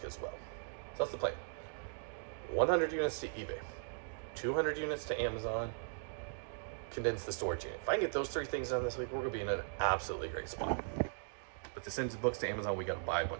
as well. So that's the plan. 100 units to eBay, 200 units to Amazon, condense the storage unit. If I can get those 3 things done this week, we're gonna be in an absolutely great spot. But to send books to Amazon, we gotta buy a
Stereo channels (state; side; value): silent; left; digital silence